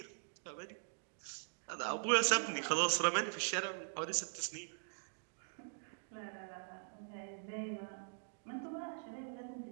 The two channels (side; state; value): left; silent; digital silence